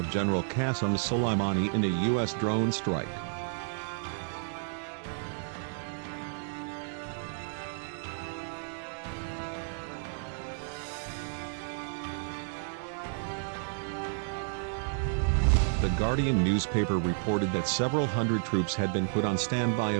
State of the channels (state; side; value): silent; left; digital silence